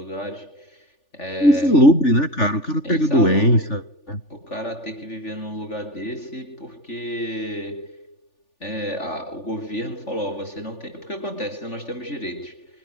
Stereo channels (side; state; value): right; late; 3.4 ms